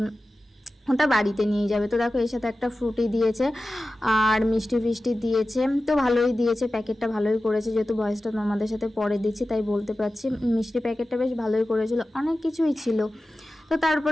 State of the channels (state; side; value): normal; both; correlation 0.95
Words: ওটা বাড়িতে নিয়ে যাবে। তো দেখো এর সাথে একটা ফ্রুটি দিয়েছে আর মিষ্টি ফিষ্টি দিয়েছে, তো ভালোই দিয়েছে, প্যাকেটটা ভালোই করেছে। যেহেতু ভয়েসটা তোমাদের সাথে পরে দিচ্ছি তাই বলতে পারছি, মিষ্টি প্যাকেটটা বেশ ভালোই করেছিল, অনেক কিছুই ছিল। তো